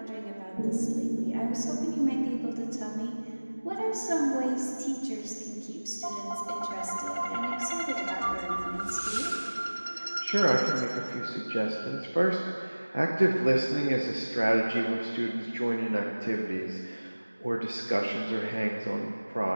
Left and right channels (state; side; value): inverted; both; correlation -1.00